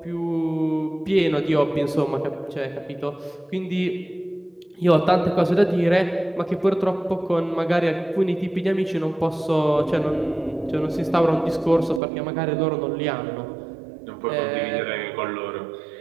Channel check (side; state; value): left; drops out; at 12.0 s